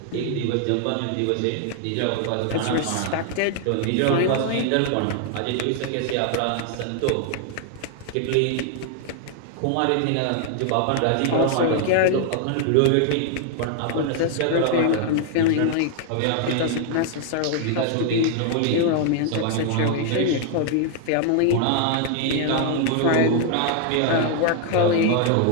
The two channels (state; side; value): different; both; correlation 0.00